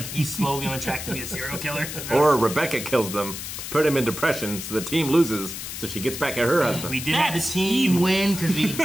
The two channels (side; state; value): left; noise; hiss, 8 dB below the sound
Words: he's slowly on track to be a serial killer. Or Rebecca kills them to put him in depression so the team loses so she gets back at her husband. We did have the team win because we